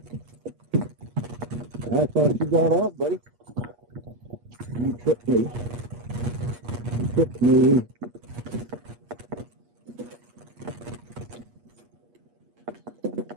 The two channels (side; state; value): left; late; 8.4 ms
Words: I thought you got off, buddy. You tripped me. You tripped me.